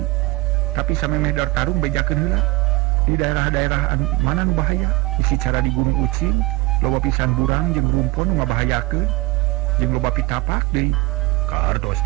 Tapi samemeh dar tarung bejakeun heula di daerah-daerah mana nu bahaya. Isi cara di Gunung Ucing loba pisan burang jeung rumpun ngabahayakeun jeung loba pitapak deui. Kartos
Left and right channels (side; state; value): left; quieter; 21.0 dB